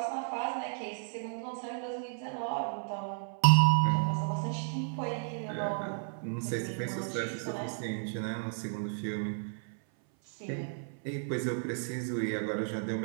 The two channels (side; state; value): left; silent; 56 dB below the other